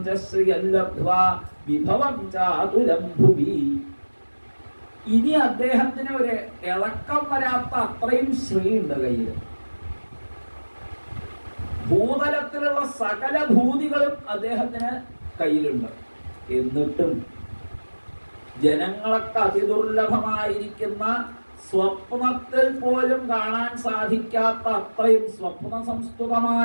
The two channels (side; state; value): both; inverted; correlation -1.00